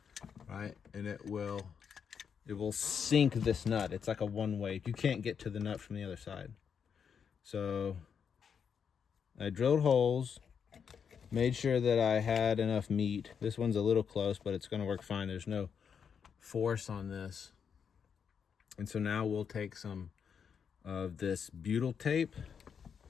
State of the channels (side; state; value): right; quieter; 7.0 dB